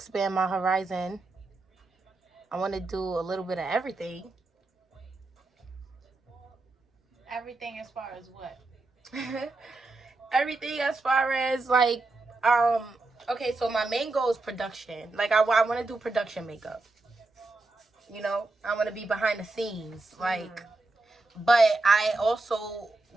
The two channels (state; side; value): quieter; left; 3.2 dB